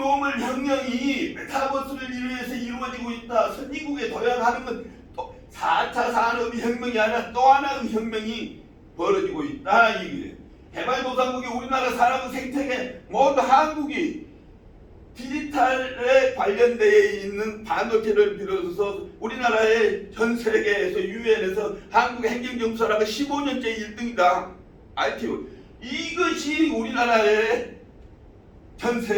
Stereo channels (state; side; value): identical; both; correlation 1.00